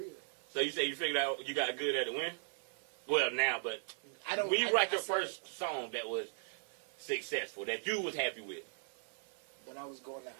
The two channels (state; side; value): silent; left; 52 dB below the other